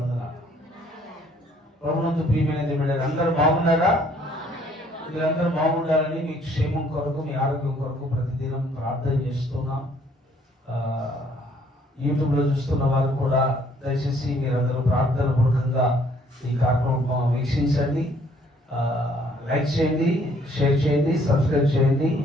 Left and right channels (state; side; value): normal; both; correlation 0.62